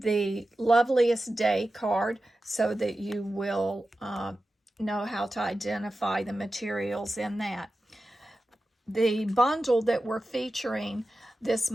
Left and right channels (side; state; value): both; normal; correlation 0.93